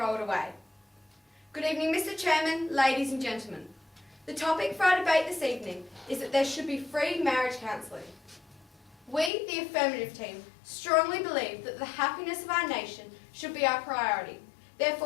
it away." Good evening, Mr. Chairman, ladies and gentlemen. The topic for our debate this evening is that there should be free marriage counselling. We, the affirmative team, strongly believe that the happiness of our nation should be our priority.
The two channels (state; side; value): drops out; right; at 9.3 s